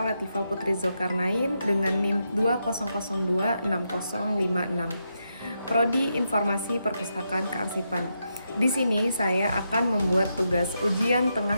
Latifah Putri Zulkarnain dengan NIM 20026056, Prodi Informasi Perpustakaan Kearsipan. Di sini saya akan membuat tugas ujian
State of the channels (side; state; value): both; inverted; correlation -0.83